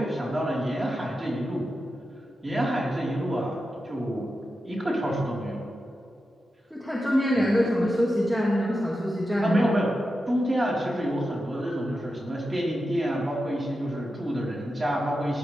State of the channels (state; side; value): normal; both; correlation 0.90